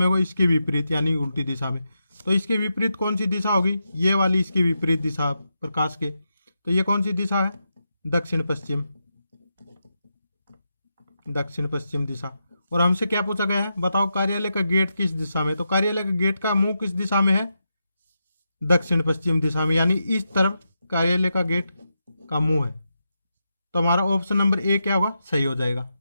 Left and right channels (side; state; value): both; inverted; correlation -0.86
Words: होगा? इसके विपरीत, यानी उल्टी दिशा में। तो इसके विपरीत कौन सी दिशा होगी? ये वाली इसके विपरीत दिशा प्रकाश के। तो ये कौन सी दिशा है? दक्षिण पश्चिम, दक्षिण पश्चिम दिशा। और हमसे क्या पूछा गया है? बताओ कार्यालय का गेट किस दिशा में? तो कार्यालय का गेट का मुंह किस दिशा में है? दक्षिण पश्चिम दिशा में, यानी इस तरफ कार्यालय का गेट का मुंह है। तो हमारा ऑप्शन नंबर ए क्या होगा? सही हो जाएगा।